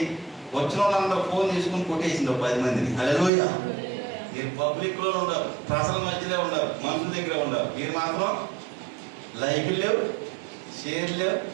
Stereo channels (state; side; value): drops out; left; at 3.3 s